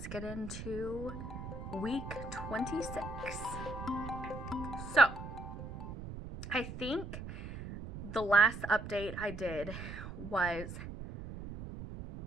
get into week 26. So, I think the last update I did was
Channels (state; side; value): noise; right; rumble, 9 dB below the sound